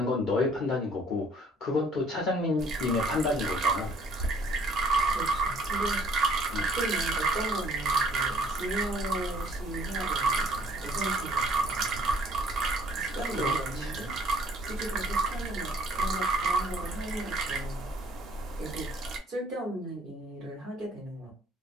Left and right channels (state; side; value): normal; both; correlation 0.58